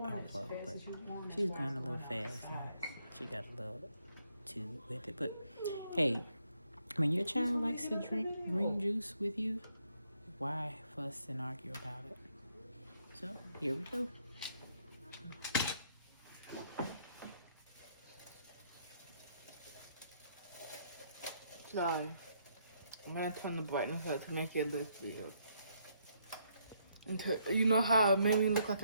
it. But she's going a little fast. And she got a little too with it. But hey, when your child likes to drink green juice with you, why fuss and argue about it? So here we go. sorry. I'm gonna turn the brightness up to make it look real. You know how it made me look like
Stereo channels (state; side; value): inverted; both; correlation -0.73